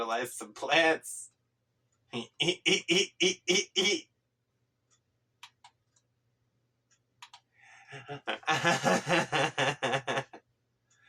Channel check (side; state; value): both; identical; correlation 1.00